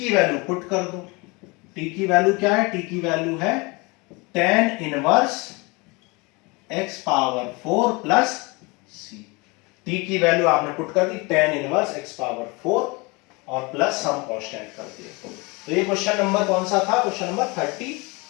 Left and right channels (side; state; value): right; quieter; 26.8 dB